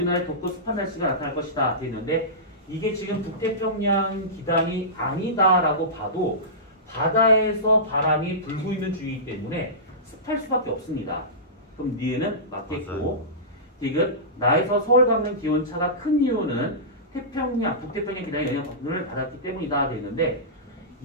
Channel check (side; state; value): both; normal; correlation -0.19